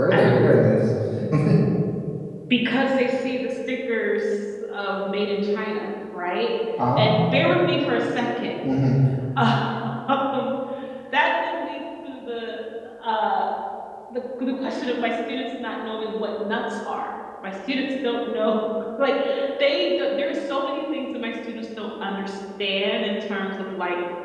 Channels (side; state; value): both; identical; correlation 1.00